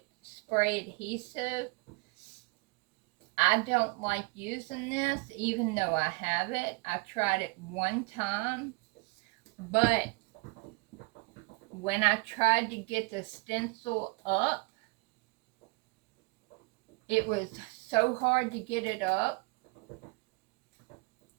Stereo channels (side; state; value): left; quieter; 27.6 dB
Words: spray adhesive. I don't like using this even though I have it. I tried it one time, but when I tried to get the stencil up, it was so hard to get it up.